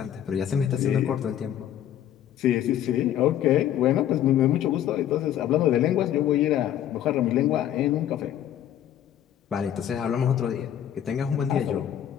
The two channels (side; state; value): right; quieter; 10.8 dB